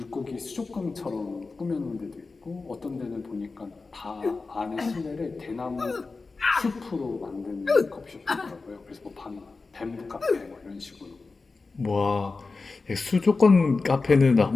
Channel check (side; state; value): right; quieter; 4.0 dB